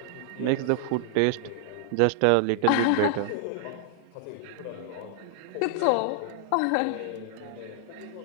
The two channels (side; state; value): both; different; correlation -0.01